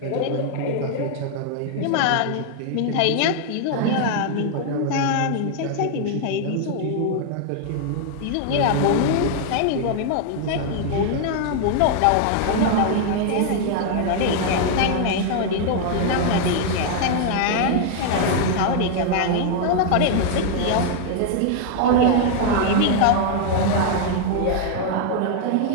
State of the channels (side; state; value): both; different; correlation 0.00